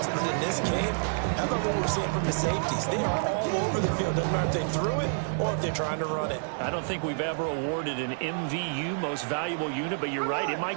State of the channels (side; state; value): left; silent; digital silence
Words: But in this game, how about what we're seeing from the safeties? They are all over the field. Doesn't matter if they threw it or if they're trying to run it. I don't think we've ever awarded an MVU, most valuable unit, but you're right, it